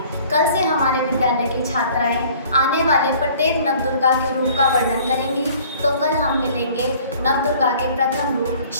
कल से हमारे विद्यालय की छात्राएं आने वाले प्रत्येक नवदुर्गा के रूप का वर्णन करेंगी। तो कल हम मिलेंगे नवदुर्गा के प्रथम रूप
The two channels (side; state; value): both; inverted; correlation -0.52